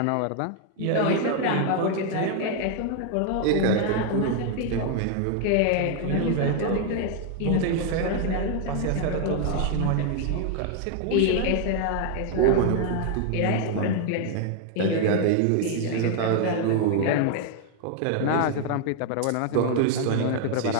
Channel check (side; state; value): both; different; correlation 0.00